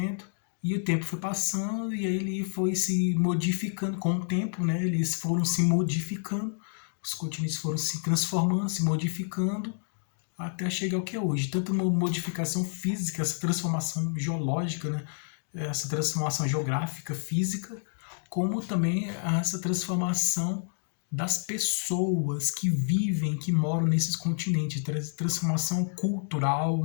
e o tempo foi passando, e aí ele foi se modificando com o tempo, né? Eles foram se modificando, os continentes foram se transformando, se modificando, até chegar ao que é hoje. Tanto uma modificação física, essa transformação geológica, né? Essa transformação geográfica, física, como também essa transformação das pessoas que vivem, que moram nesses continentes, transformação cultural,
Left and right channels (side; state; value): right; silent; digital silence